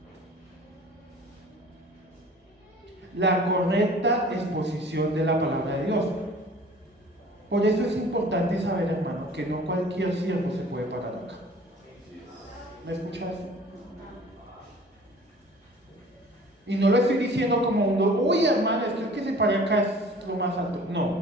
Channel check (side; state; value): both; normal; correlation 0.47